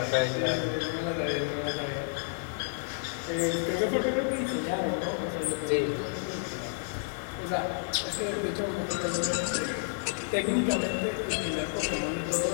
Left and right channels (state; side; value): silent; right; 58 dB below the other